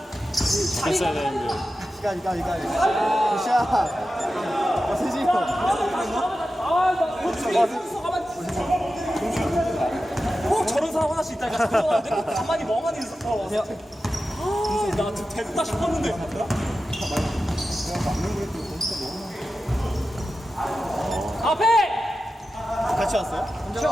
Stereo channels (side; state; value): both; normal; correlation 0.93